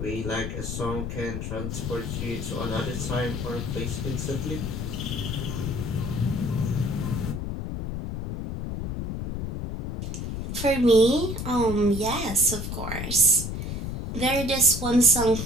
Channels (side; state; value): left; noise; rumble, 4 dB below the sound